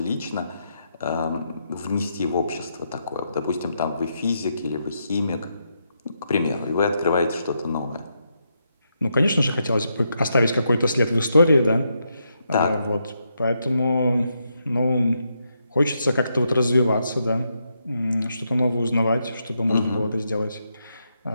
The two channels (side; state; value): both; inverted; correlation -0.81